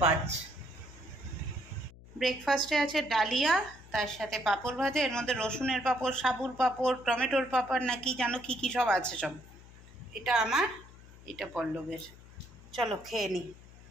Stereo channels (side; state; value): left; noise; hum, 20 dB below the sound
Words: ব্রেকফাস্টে আছে ডালিয়া, তার সাথে পাঁপড় ভাজা, এর মধ্যে রসুনের পাঁপড়, সাবুর পাঁপড়, টমেটোর পাঁপড় না কি জানো কী কী সব আছে সব। এটা আমার, এটা পল্লবের। চলো খেয়ে নিই